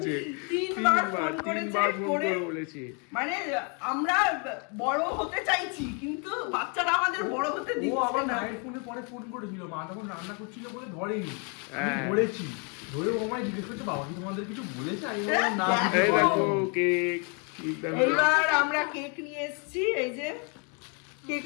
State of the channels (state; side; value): quieter; right; 36.1 dB